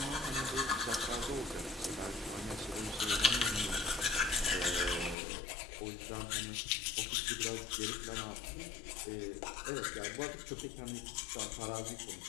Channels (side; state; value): right; drops out; at 5.2 s